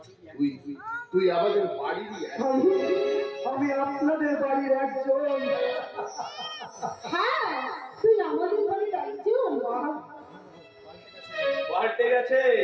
তুই তুই আমাদের বাড়িরই একজন। আমি আপনাদের বাড়ির একজন। হ্যাঁ, তুই আমাদের বাড়ির একজন। পাল্টে গেছে,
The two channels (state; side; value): identical; both; correlation 1.00